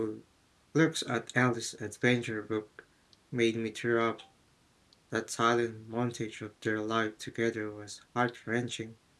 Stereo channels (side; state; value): both; identical; correlation 1.00